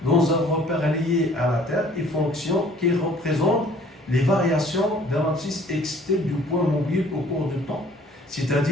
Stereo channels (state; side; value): normal; both; correlation 0.55